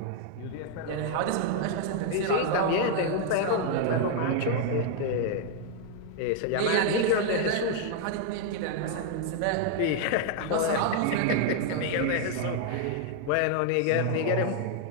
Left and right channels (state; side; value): different; both; correlation 0.00